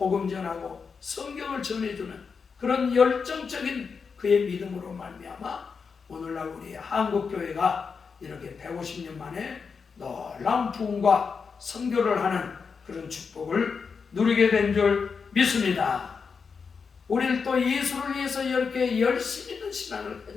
전하고 성경을 전해주는 그런 열정적인 그의 믿음으로 말미암아 오늘날 우리 한국교회가 이렇게 150년 만에 놀라운 부흥과 선교를 하는 그런 축복을 누리게 된 줄 믿습니다. 우리는 또 예수를 위해서 이렇게 열심 있는 신앙을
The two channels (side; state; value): right; quieter; 5.5 dB